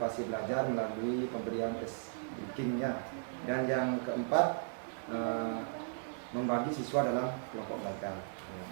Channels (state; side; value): silent; left; 54 dB below the other